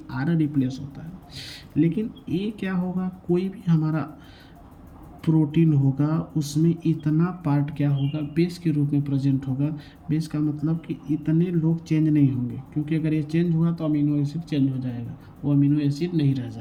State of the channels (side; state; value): both; identical; correlation 1.00